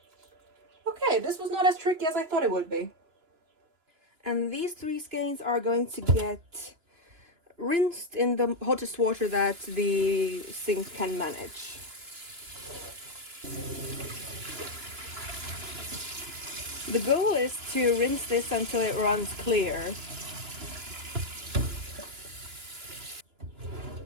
Okay, this was not as tricky as I thought it would be. And these 3 skeins are going to get rinsed in the hottest water that the sink can manage. The goal is to rinse this until it runs clear.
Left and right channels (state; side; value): late; left; 2.9 ms